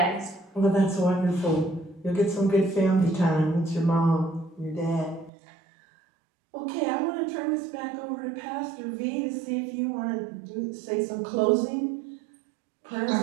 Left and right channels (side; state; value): left; drops out; at 5.3 s